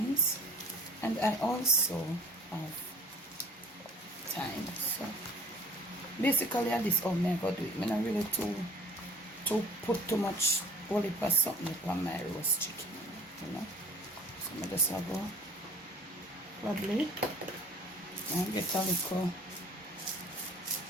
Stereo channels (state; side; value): normal; both; correlation 0.47